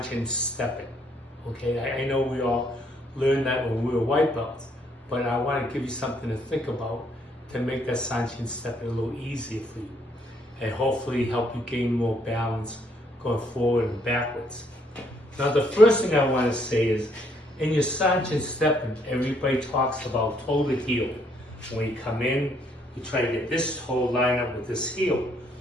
stepping. Okay, I know we all learned that when we were white belts, but I want to give you something to think about to make that Sanchin stepping a little easier for you, and hopefully help you gain more balance going forward and backwards. Now, the first thing I want to say is, in your Sanchin stepping, everybody talks about toe to heel. When you come in, you try to get this toe lined up with this heel.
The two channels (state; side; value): normal; both; correlation 0.69